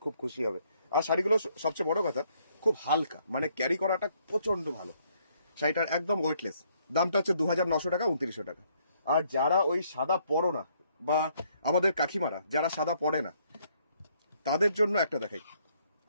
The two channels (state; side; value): inverted; both; correlation -0.69